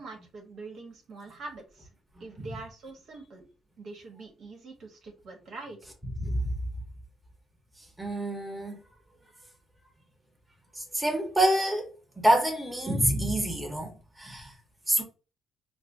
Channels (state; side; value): normal; both; correlation 0.86